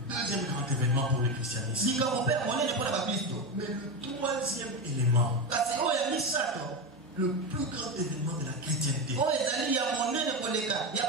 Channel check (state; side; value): normal; both; correlation 0.17